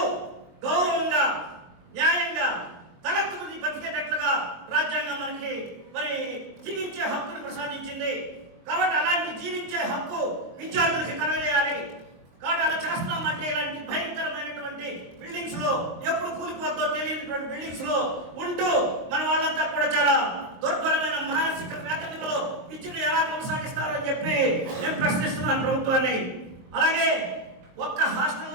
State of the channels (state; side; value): late; left; 23 ms